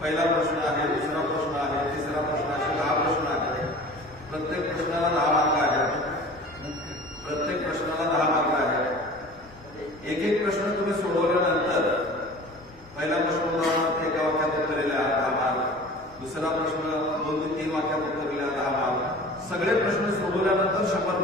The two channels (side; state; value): both; normal; correlation 0.41